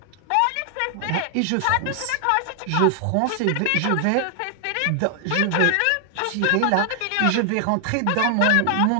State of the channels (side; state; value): both; different; correlation 0.00